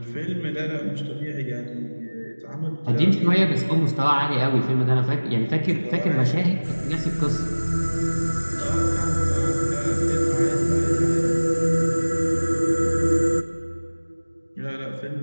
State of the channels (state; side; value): inverted; both; correlation -1.00